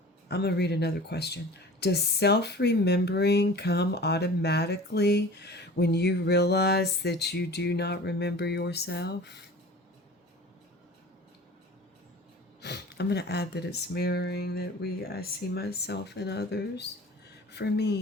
I'm going to read another question. Does self-remembering come automatically when you realize that you do not remember yourself? I'm going to add that it's mirroring, that I see myself and others. For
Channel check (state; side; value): normal; both; correlation 0.41